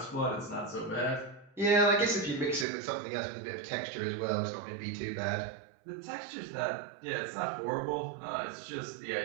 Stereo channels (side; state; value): left; drops out; at 2.7 s